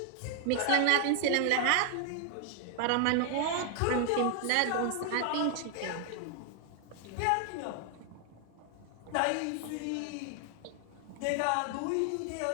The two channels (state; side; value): different; both; correlation 0.00